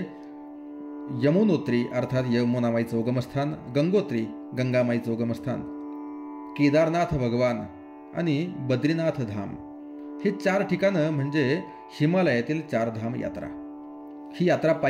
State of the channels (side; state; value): both; identical; correlation 1.00